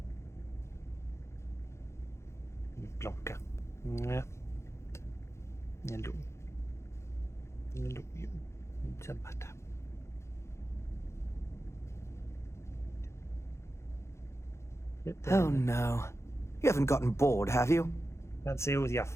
Blanka. Ja. Hello. Hello, you. Samata. Oh no. You haven't gotten bored, have you? Can't see with your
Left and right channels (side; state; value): right; late; 0.13 ms